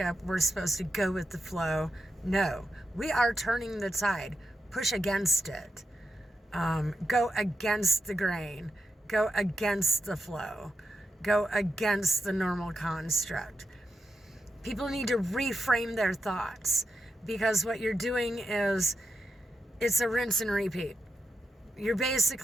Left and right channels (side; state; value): both; normal; correlation 0.87